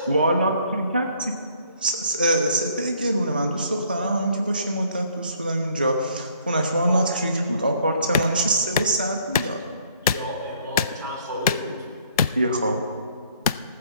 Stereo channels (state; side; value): inverted; both; correlation -0.62